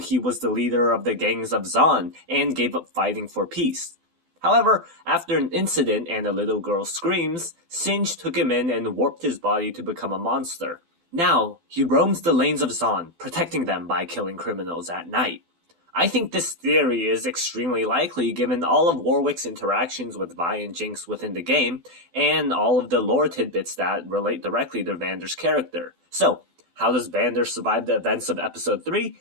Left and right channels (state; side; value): late; left; 12 ms